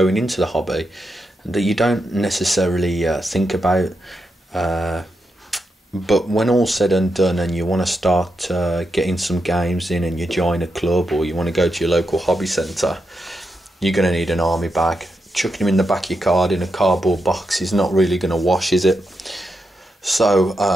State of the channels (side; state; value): both; normal; correlation 0.85